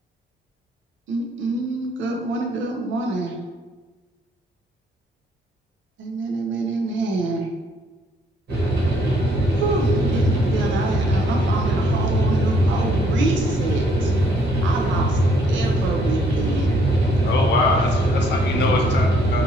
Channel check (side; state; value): both; normal; correlation 0.66